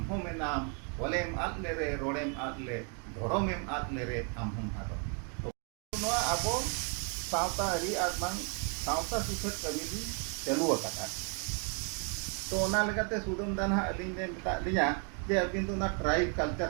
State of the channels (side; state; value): left; quieter; 39.3 dB